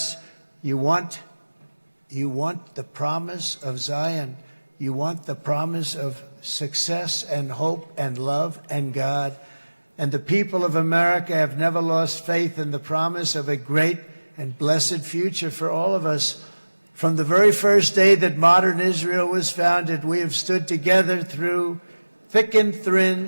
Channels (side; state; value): both; inverted; correlation -1.00